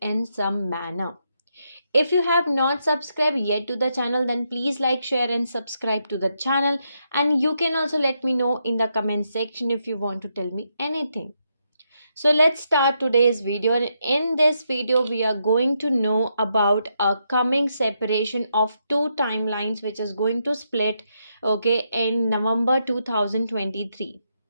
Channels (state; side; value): inverted; both; correlation -0.81